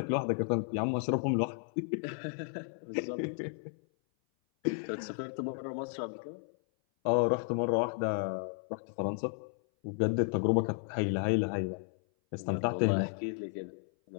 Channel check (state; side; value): silent; right; 56 dB below the other